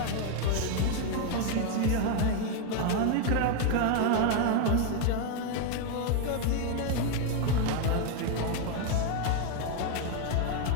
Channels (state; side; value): different; both; correlation 0.01